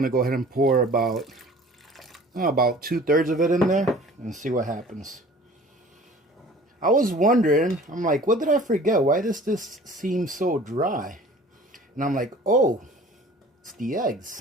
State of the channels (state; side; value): normal; both; correlation 0.47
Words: to go ahead and pour about 2/3 of it in there and see what happens. I was wondering, I'm like, what did I forget? Why does this seem so dry? And I'm like, oh, it's the